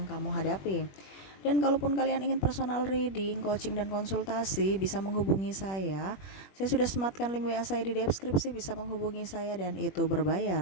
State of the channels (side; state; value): right; late; 21 ms